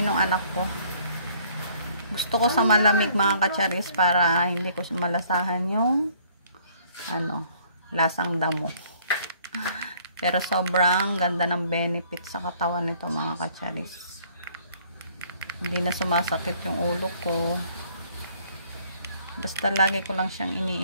anak ko. Gusto ko sa malamig mga kacharis para hindi ko malasahan yung lasang damo. Pero sobrang ganda ng benefit sa katawan nito mga kacharis. Hindi na sumasakit yung ulo ko. Basta lagi ko lang siyang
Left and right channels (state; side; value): inverted; both; correlation -0.60